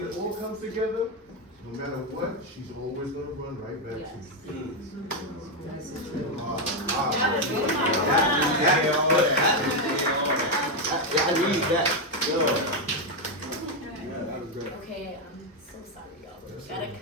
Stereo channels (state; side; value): normal; both; correlation 0.04